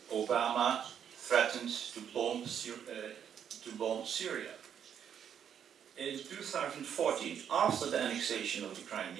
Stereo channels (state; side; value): quieter; left; 8.6 dB